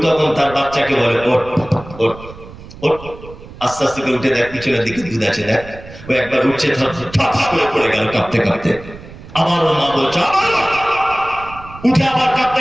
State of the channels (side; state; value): right; noise; rumble, 16 dB below the sound